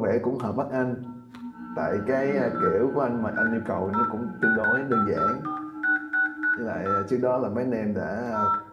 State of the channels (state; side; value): identical; both; correlation 1.00